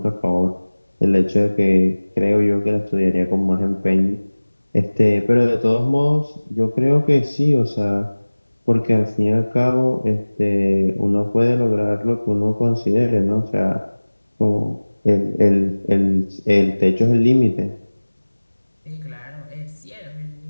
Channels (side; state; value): both; inverted; correlation -1.00